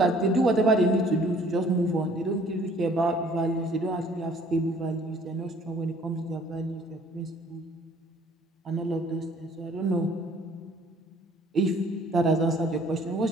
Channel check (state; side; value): normal; both; correlation 0.56